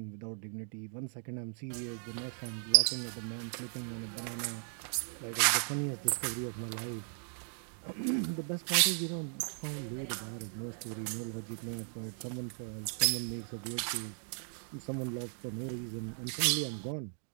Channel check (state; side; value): silent; left; 53 dB below the other